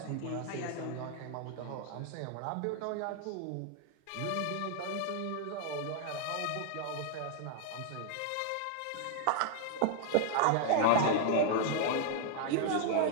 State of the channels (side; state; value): both; different; correlation 0.00